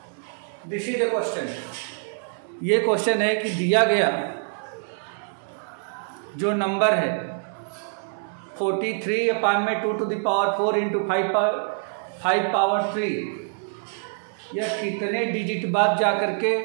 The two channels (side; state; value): left; silent; 62 dB below the other